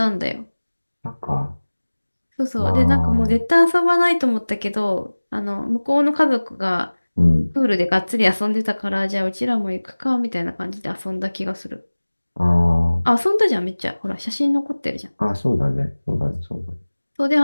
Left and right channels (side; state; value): both; inverted; correlation -1.00